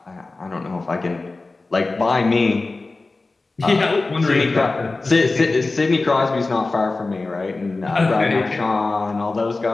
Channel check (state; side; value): quieter; right; 3.4 dB